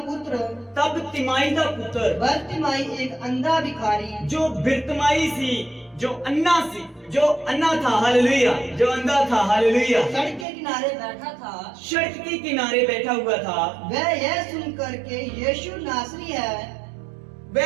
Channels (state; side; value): drops out; left; at 10.5 s